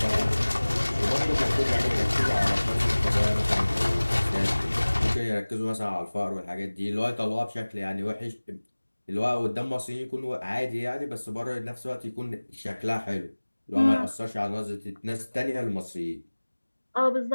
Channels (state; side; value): inverted; both; correlation -1.00